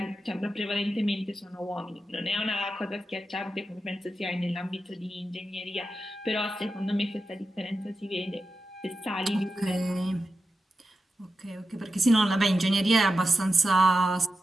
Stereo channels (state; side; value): normal; both; correlation 0.90